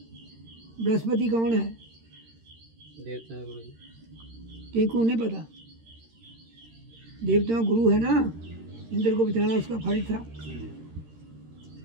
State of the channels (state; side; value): late; left; 13 ms